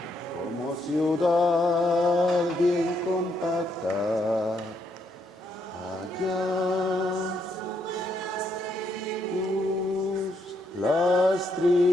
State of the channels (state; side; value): normal; both; correlation 0.76